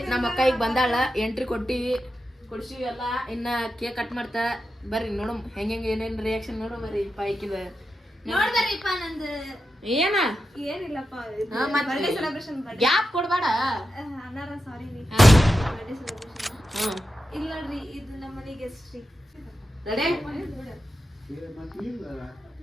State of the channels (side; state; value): both; normal; correlation 0.89